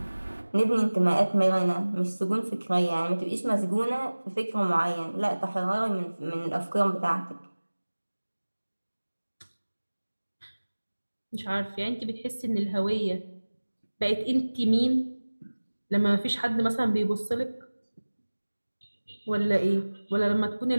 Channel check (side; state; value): both; inverted; correlation -1.00